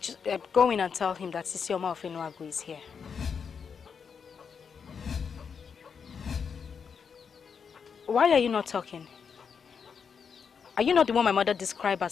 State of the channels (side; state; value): right; quieter; 6.4 dB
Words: go in and tell him that Isioma of Enuagu is here. Why are you not talking? Are you not the one my mother described